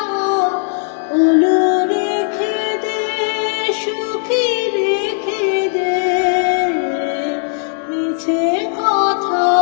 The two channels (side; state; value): right; silent; 65 dB below the other